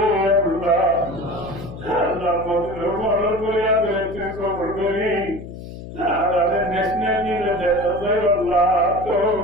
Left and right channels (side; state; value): left; noise; hum, 12 dB below the sound